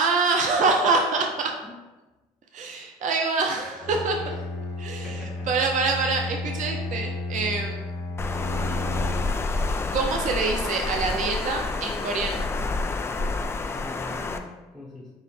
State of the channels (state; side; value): normal; both; correlation 0.38